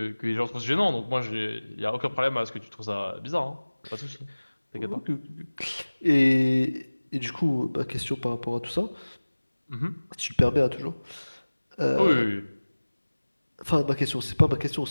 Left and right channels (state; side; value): inverted; both; correlation -1.00